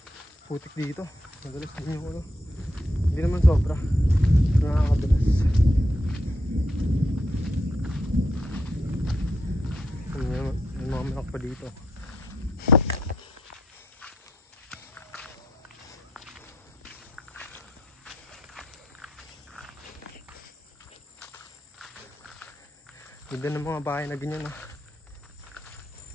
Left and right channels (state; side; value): normal; both; correlation 0.78